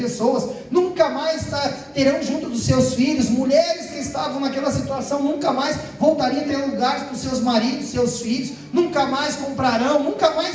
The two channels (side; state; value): both; identical; correlation 1.00